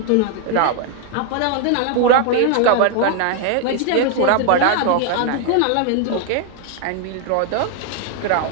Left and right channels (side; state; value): both; different; correlation 0.00